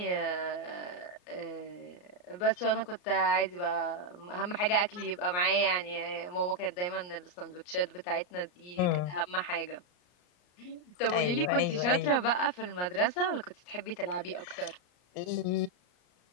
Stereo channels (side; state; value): right; late; 34 ms